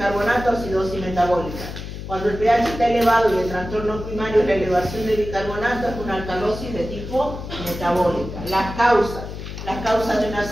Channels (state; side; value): noise; left; hum, 9 dB below the sound